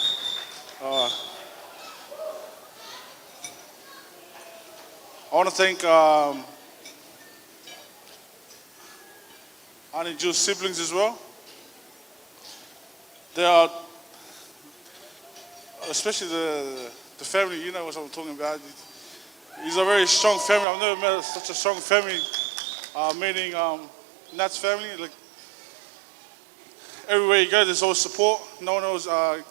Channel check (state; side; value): drops out; left; at 20.7 s